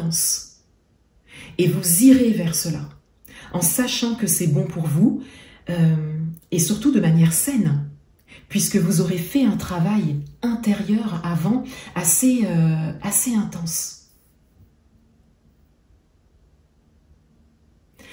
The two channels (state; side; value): identical; both; correlation 1.00